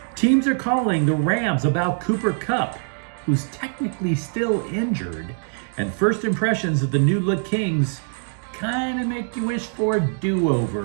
Teams are calling the Rams about Cooper Kupp, who's technically still injured, and first impressions of the new look Kings kind of make you wish for a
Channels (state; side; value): silent; left; 57 dB below the other